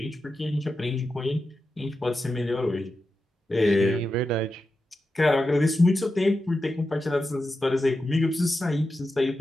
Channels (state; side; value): normal; both; correlation 0.90